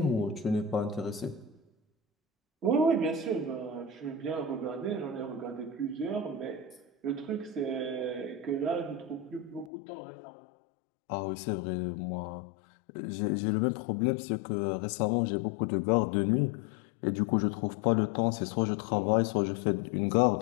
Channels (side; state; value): right; drops out; at 9.7 s